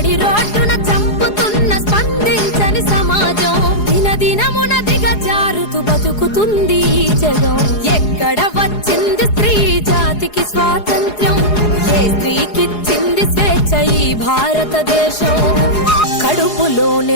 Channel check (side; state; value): right; late; 4.8 ms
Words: రోడ్డున చంపుతున్న స్పందించని సమాజం. దినదినమున దిగజారుతూ బతుకుతుంది ఈ జగం. ఎక్కడ వచ్చింది స్త్రీ జాతికి స్వాతంత్ర్యం? ఏ స్త్రీకిచ్చింది స్వేచ్ఛ ఈ భారతదేశం?